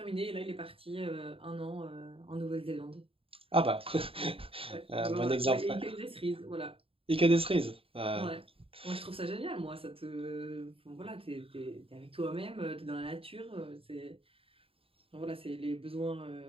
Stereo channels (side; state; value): left; late; 0.27 ms